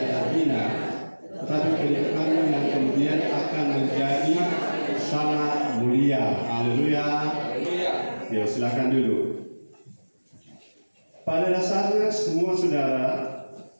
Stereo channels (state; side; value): inverted; both; correlation -1.00